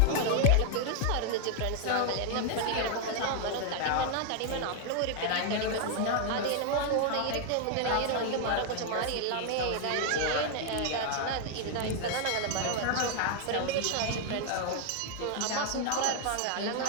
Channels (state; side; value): different; both; correlation 0.00